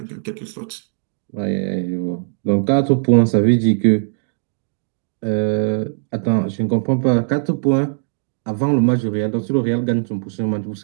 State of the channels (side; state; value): left; silent; digital silence